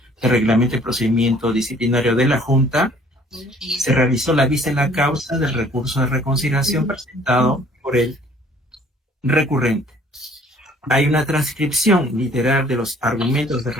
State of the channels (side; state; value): both; normal; correlation 0.56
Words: del Reglamento de Procedimiento Disciplinario de la Junta, se realizó la vista en la causa del recurso de reconsideración presentado por el recurrente. Hay una transcripción literal de los argumentos del